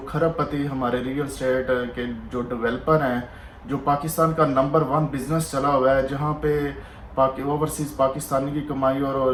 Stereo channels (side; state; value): both; identical; correlation 1.00